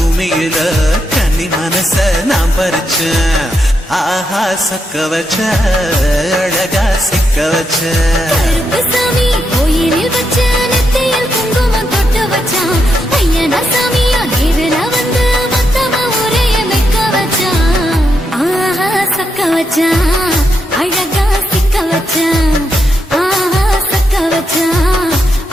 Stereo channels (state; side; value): normal; both; correlation 0.82